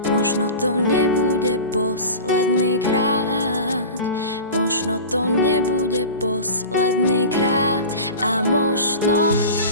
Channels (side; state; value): both; inverted; correlation -0.33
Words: možno to nebude posledný krát. Možno to nebude posledný krát. A možno